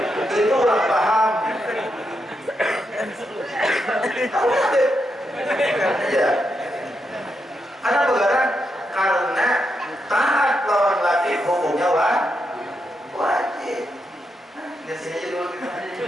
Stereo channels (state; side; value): normal; both; correlation 0.83